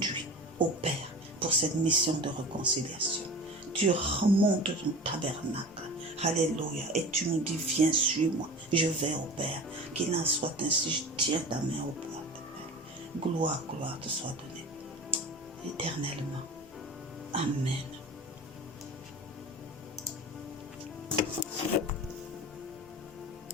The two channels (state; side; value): normal; both; correlation 0.34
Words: au Père pour cette mission de réconciliation. Tu remontes ton tabernacle. Alléluia. Et tu nous dis, viens, suis-moi. Je vais au Père. Qu'il en soit ainsi. Je tiens ta main au Père. Gloire, gloire te soit donnée. Éternellement. Amen.